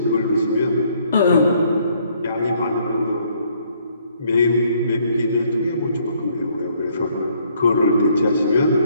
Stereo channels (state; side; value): inverted; both; correlation -0.66